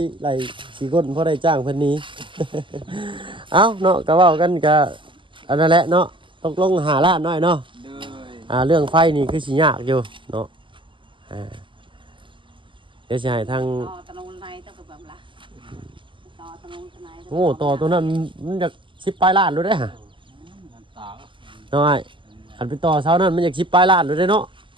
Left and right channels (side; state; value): left; late; 0.24 ms